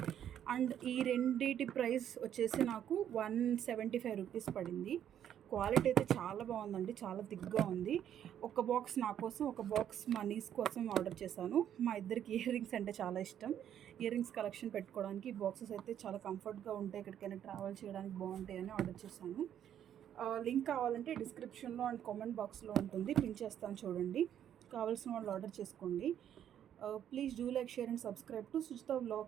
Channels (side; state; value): left; quieter; 10.0 dB